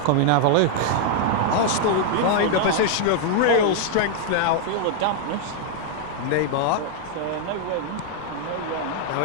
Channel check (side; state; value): both; different; correlation 0.00